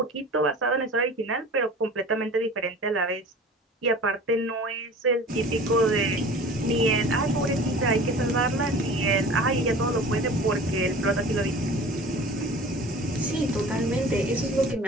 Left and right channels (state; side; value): normal; both; correlation 0.41